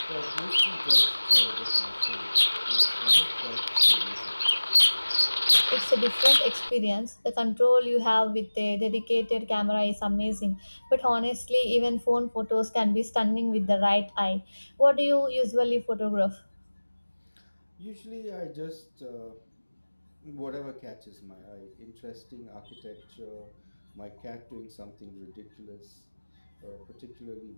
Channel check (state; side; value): inverted; both; correlation -1.00